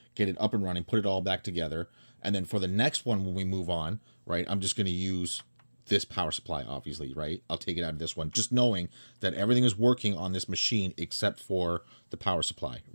get it up and running, put it all back together. And then for the next one, when we move on, right, I'm just going to use this power supply, obviously, right? I'll take it out of this one, just knowing that everything is working on this machine except for the power supply,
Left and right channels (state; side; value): inverted; both; correlation -1.00